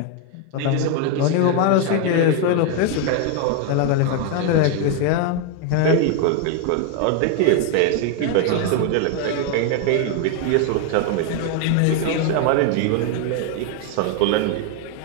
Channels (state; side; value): different; both; correlation 0.01